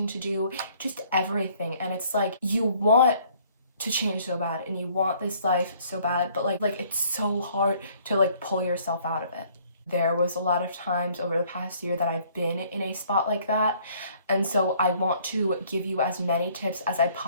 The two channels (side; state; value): both; inverted; correlation -0.61